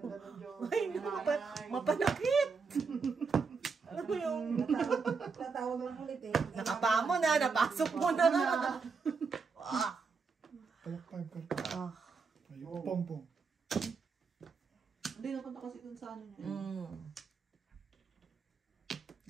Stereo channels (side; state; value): left; quieter; 5.0 dB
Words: ng Joker. Ay, mapanakit. Ano mo yung... Tatawag lang ulit eh. Nakapa mo na, napasok mo na. Ah. Kalok 5 ka. Ah. Ayun. Pompong. Hindi napunta kasi dun sa ano niya.